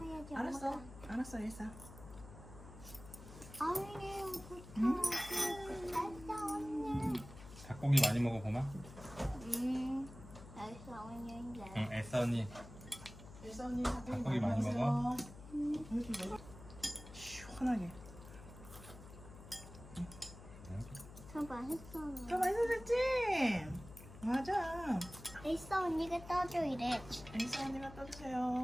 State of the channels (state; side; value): noise; left; hum, 16 dB below the sound